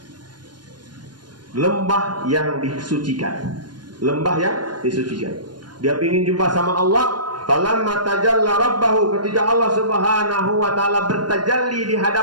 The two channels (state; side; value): late; left; 0.71 ms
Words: lembah yang disucikan. Lembah yang disucikan. Dia ingin jumpa sama Allah. Falamma tajalla rabbahu, ketika Allah Subhanahu wa taala bertajalli di